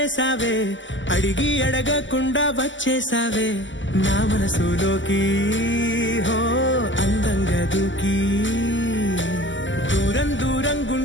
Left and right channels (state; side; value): late; right; 0.55 ms